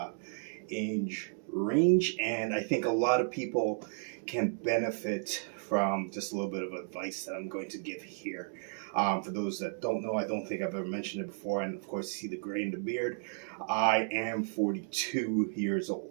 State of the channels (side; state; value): left; silent; digital silence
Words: age range, and I think a lot of people can benefit from just a little bit of advice that I'm going to give here. For those that don't know, I don't think I've ever mentioned it before, and of course, see the gray in the beard. I am 42 years